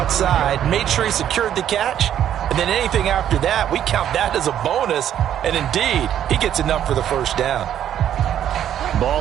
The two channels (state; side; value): quieter; left; 10.4 dB